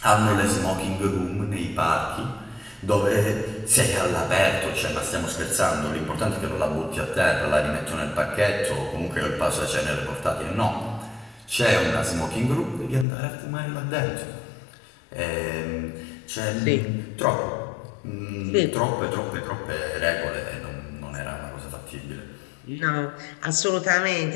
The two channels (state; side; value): drops out; right; at 13.1 s